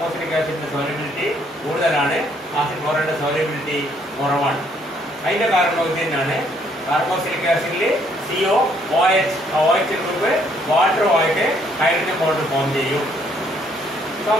ആസിഡിന്റെ സോലിബിലിറ്റി കൂടുതലാണ്, ആസിഡ് ക്ലോറൈഡിന്റെ സോലിബിലിറ്റി കുറവാണ്. അതിന്റെ കാരണം ഇത് തന്നെയാണ്. കാർബോസിലിക് ആസിഡിൽ CO OH ഗ്രൂപ്പ് വാട്ടറുമായിട്ട് ഹൈഡ്രജൻ ബോണ്ട് ഫോം ചെയ്യും.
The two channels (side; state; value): both; normal; correlation 0.67